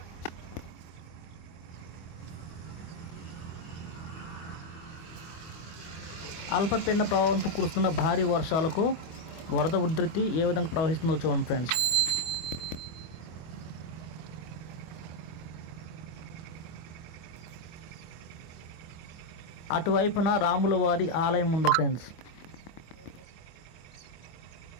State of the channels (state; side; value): late; right; 25 ms